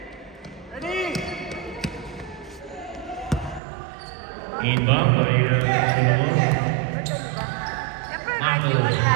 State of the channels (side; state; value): left; drops out; at 3.6 s